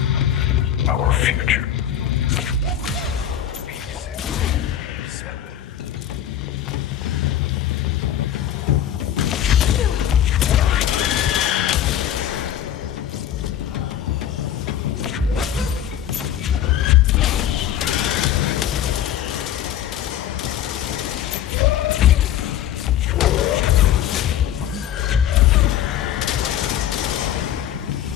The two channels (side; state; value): right; quieter; 10.6 dB